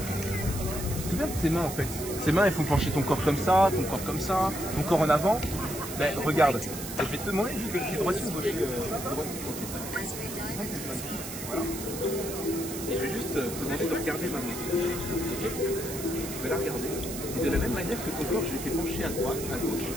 C'est bien tes mains en fait. Ces mains elles font pencher ton corps comme ça, ton corps comme ça, ton corps en avant. Ben regarde, je vais te demander, je suis droit ou gauche. Voilà. Et je vais juste te demander de regarder ma main. Okay. Je vais la regarder. Et de la même manière que ton corps, je l'ai fait pencher à droite, à gauche.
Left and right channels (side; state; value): right; noise; hiss, 9 dB below the sound